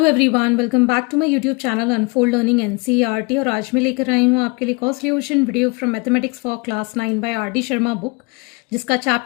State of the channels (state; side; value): quieter; right; 28.9 dB